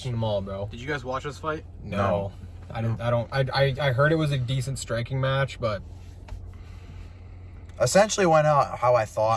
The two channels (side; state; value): both; identical; correlation 1.00